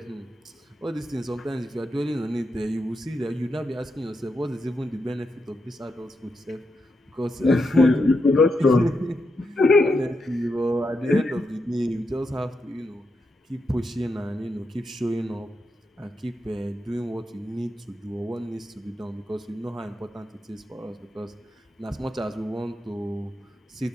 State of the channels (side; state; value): both; normal; correlation 0.84